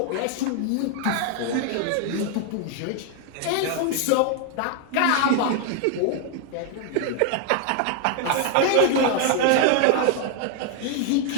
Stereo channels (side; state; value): both; different; correlation 0.00